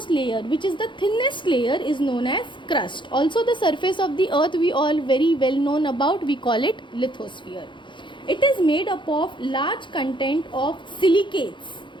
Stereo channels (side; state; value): right; late; 0.23 ms